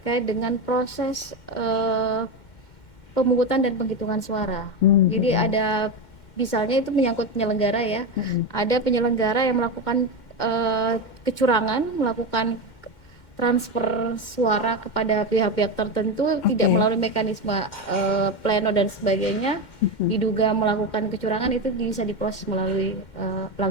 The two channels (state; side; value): late; right; 2.1 ms